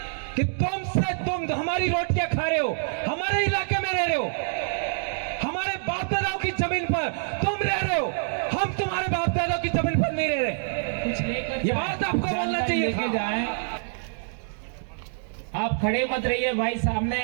कि तुम हमारी रोटियां खा रहे हो, हमारे इलाके में रह रहे हो, हमारे बाप दादाओं की जमीन पर तुम रह रहे हो, हम तुम्हारे बाप दादाओं की जमीन पर नहीं रह रहे। कुछ लेकर ये बात आपको बोलना चाहिए था। जाए। आप खड़े मत रहिए भाई, सामने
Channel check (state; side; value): silent; left; digital silence